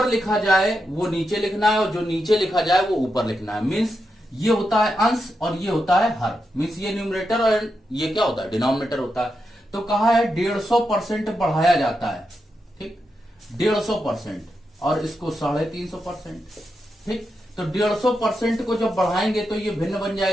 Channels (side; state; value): both; normal; correlation 0.86